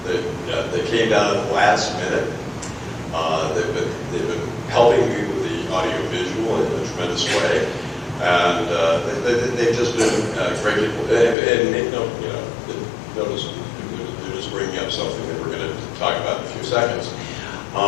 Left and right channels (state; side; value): drops out; right; at 11.4 s